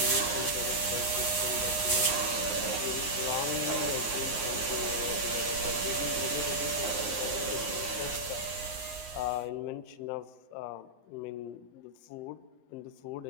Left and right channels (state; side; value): late; right; 9.6 ms